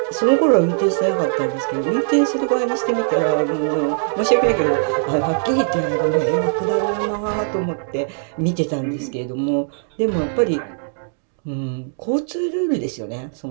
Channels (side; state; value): left; silent; digital silence